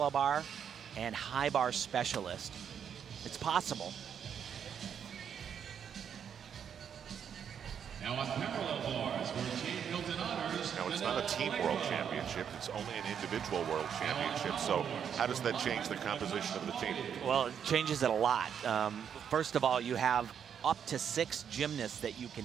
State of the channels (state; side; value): quieter; left; 8.0 dB